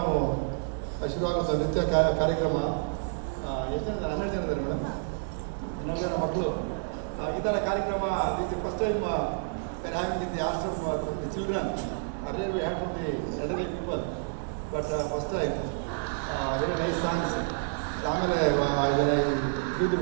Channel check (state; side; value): silent; left; digital silence